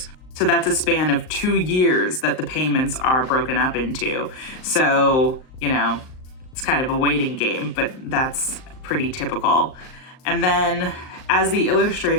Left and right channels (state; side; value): late; right; 38 ms